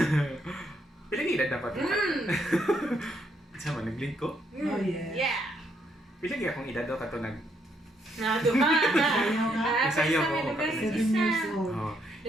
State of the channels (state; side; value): normal; both; correlation 0.74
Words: Pilang edad dapat? Sama, nag-link ko? Oh, yeah. Yeah. Pilang akong edad daw kato nag... Nado ka. Sayaw ka? Sayaw ko. 7 years old. Oh,